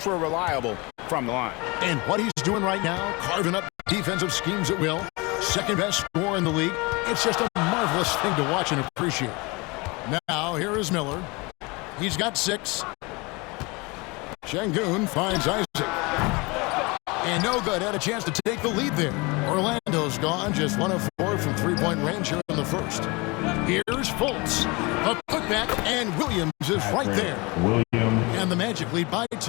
reliable from the line. And what he's doing right now, carving up defensive schemes at will. Second best scorer in the league. It's just a marvelous thing to watch and appreciate. Now, here is Miller. He's got 6. Şengün finds Isaac. And no good. Had a chance to take the lead there. Orlando's gone. Just 1 of 4 from three-point range here in the first. Here's Fultz. A putback, and Williams is right there. And the Magic lead by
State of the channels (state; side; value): quieter; right; 26.2 dB